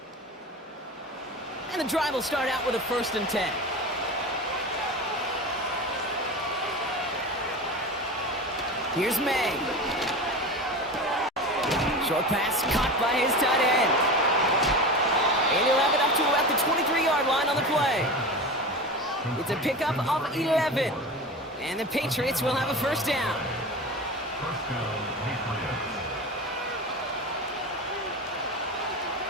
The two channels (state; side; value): normal; both; correlation 0.29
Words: And the drive will start out with a 1st and 10. Here's May. Short pass caught by his tight end. And he'll have it up to about the 23-yard line on the play. It's a pickup of 11. And the Patriots will have a 1st down.